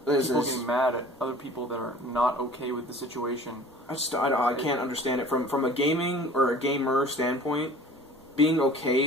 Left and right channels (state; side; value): normal; both; correlation 0.46